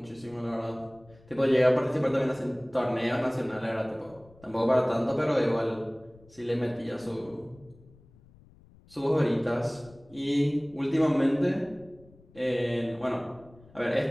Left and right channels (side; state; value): left; noise; rumble, 26 dB below the sound